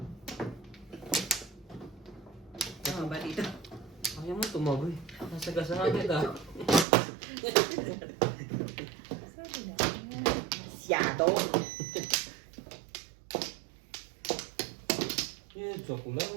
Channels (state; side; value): drops out; left; at 6.9 s